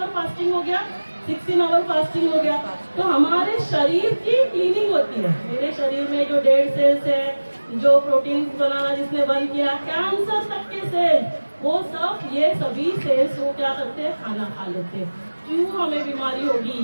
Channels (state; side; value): inverted; both; correlation -1.00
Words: फास्टिंग हो गया, 16 आवर फास्टिंग हो गया। तो हमारे शरीर की क्लीनिंग होती है, मेरे शरीर में जो डेड सेल्स है, जो प्रोटीन बनाना जिसने बंद किया, कैंसर तक के सेल्स, वो सब ये सभी सेल्स वो क्या करते हैं, खाना खा लेते हैं। क्यों हमें बीमारी होगी,